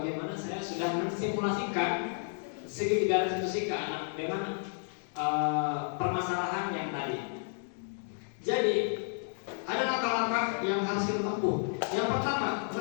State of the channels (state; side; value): silent; right; 57 dB below the other